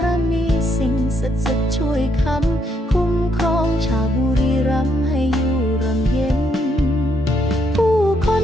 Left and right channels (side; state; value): both; normal; correlation 0.75